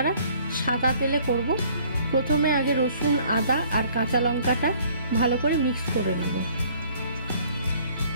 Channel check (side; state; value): both; inverted; correlation -0.57